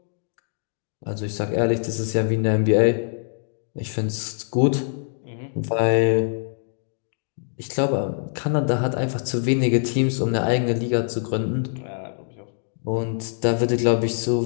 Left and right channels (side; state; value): right; silent; digital silence